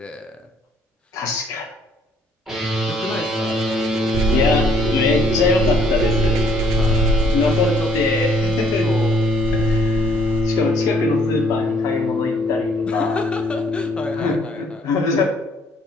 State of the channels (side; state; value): both; normal; correlation 0.64